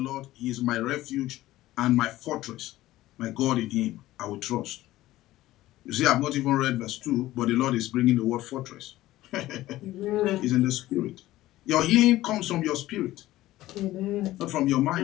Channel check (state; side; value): quieter; right; 16.0 dB